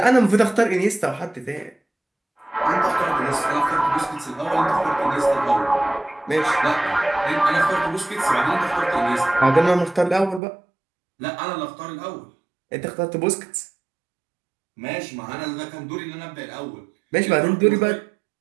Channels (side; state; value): left; drops out; at 10.4 s